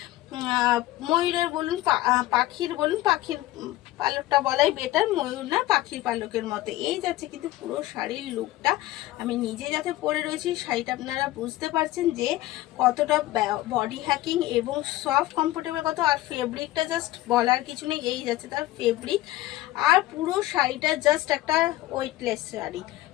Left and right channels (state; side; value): quieter; right; 16.5 dB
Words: ময়ূরের বলুন, পাখির বলুন, পাখির পালকটা বলাই বেটার, ময়ূর না পাখির পালকের মতো। এই যাচ্ছে কিন্তু পুরো শাড়ির লুকটা। আমি নিজে যাতে পরে রয়েছি, শাড়িটা আপনারা বুঝতে পারছেন যে কতটা বডি হ্যাকিং এবং সফট কমফোর্টেবল কত। আর ফেব্রিকটা জাস্ট বলার কিছু নেই, এই যাচ্ছে তার ফেব্রিক। আর পুরো শাড়িটা জাস্ট একটা ওয়েটলেস শাড়ি,